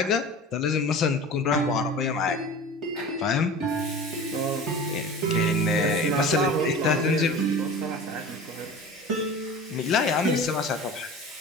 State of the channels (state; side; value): normal; both; correlation 0.36